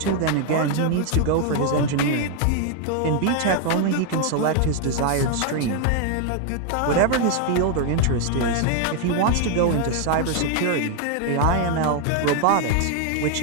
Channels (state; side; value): different; both; correlation 0.00